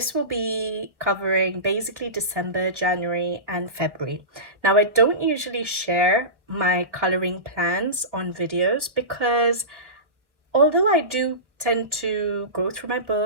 will be covering basically December, January and February. Now I don't usually share my coloring plans on videos because although I do tend to go through my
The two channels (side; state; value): left; late; 1.3 ms